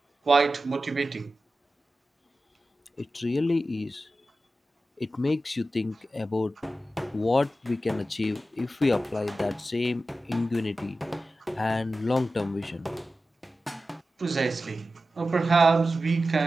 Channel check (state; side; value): normal; both; correlation 0.93